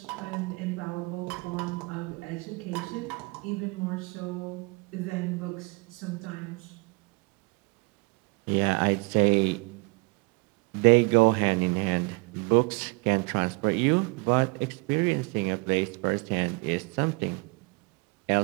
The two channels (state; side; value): quieter; left; 28.3 dB